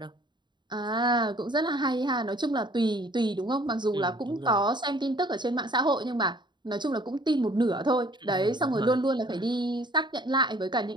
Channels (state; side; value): late; left; 0.22 ms